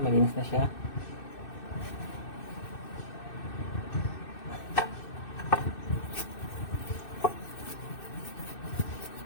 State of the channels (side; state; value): right; late; 2.6 ms